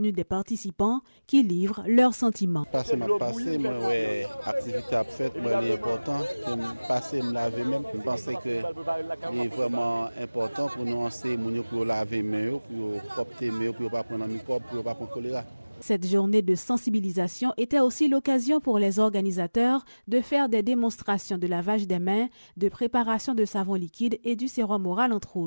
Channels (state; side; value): inverted; both; correlation -1.00